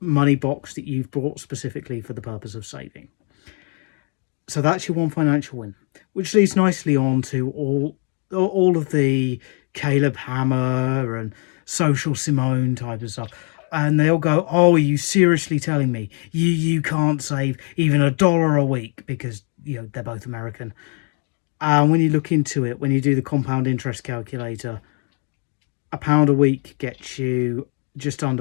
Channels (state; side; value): quieter; right; 39.3 dB